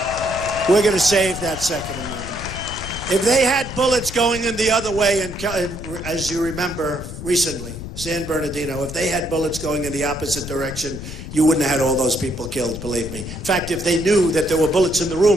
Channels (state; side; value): noise; left; rumble, 10 dB below the sound